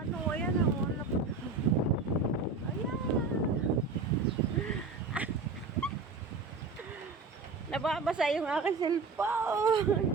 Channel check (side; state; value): left; quieter; 4.2 dB